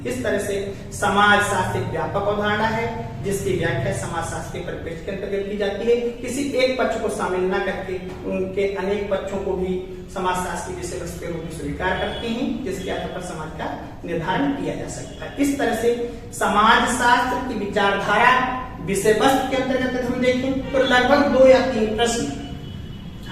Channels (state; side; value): identical; both; correlation 1.00